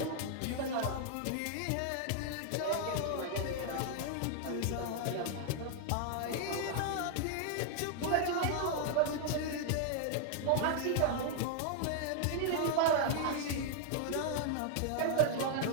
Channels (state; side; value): different; both; correlation -0.01